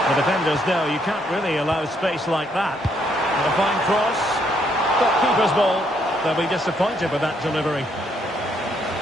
The defenders know you can't really allow space like that. And a fine cross. But keeper's ball. They'll be disappointed with that delivery.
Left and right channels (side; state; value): both; normal; correlation 0.72